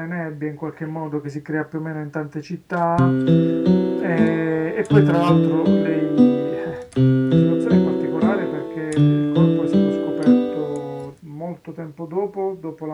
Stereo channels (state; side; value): identical; both; correlation 1.00